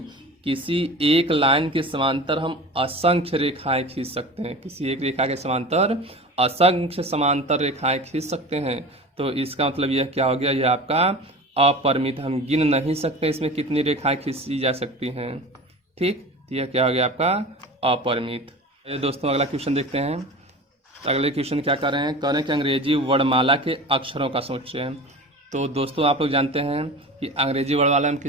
किसी एक लाइन के समांतर हम असंख्य रेखाएं खींच सकते हैं, किसी एक रेखा के समांतर असंख्य समांतर रेखाएं खींच सकते हैं। तो इसका मतलब यह क्या हो गया, यह आपका अपरिमित, हम गिन नहीं सकते इसमें कितनी रेखाएं खींची जा सकती हैं। ठीक, तो यह क्या हो गया आपका अपरिमित। ये दोस्तों अगला क्वेश्चन देखते हैं। तो अगले क्वेश्चन क्या कर रहे हैं, कह रहे हैं कि अंग्रेजी वर्णमाला के अक्षरों का सोचें। तो दोस्तों आप लोग जानते हैं कि अंग्रेजी वर्णमाला में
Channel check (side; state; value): both; normal; correlation 0.34